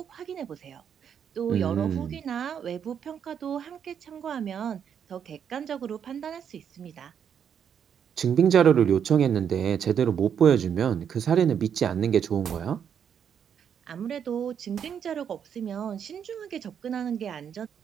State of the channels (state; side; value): quieter; left; 8.1 dB